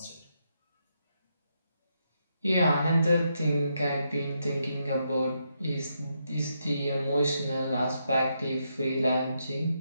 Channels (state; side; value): inverted; both; correlation -0.81